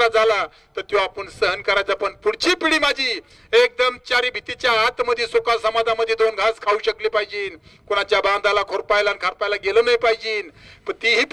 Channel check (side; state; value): both; identical; correlation 1.00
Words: झाला तर तो आपण सहन करायचा. पण पुढची पिढी माझी एकदम चारी भीतीच्या आतमध्ये सुखा समाधामध्ये 2 घास खाऊ शकली पाहिजे. कोणाच्या बांधाला, खोरपायला आणि खारपायला गेलो नाही पाहिजे. पण तीही